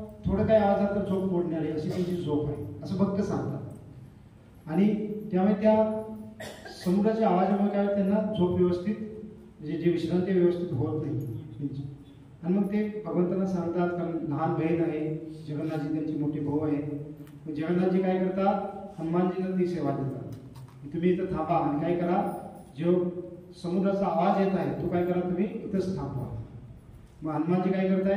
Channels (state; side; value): identical; both; correlation 1.00